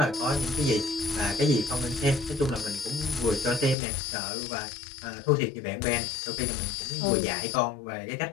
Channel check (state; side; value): drops out; right; at 3.8 s